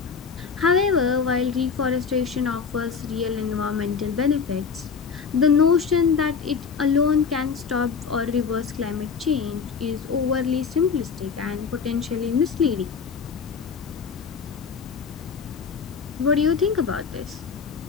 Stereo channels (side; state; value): right; quieter; 5.9 dB